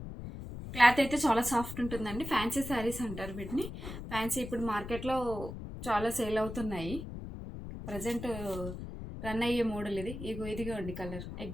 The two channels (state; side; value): noise; left; rumble, 9 dB below the sound